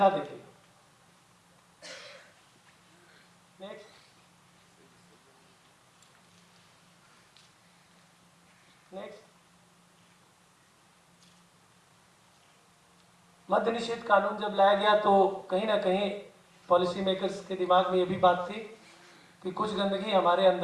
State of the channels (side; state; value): both; identical; correlation 1.00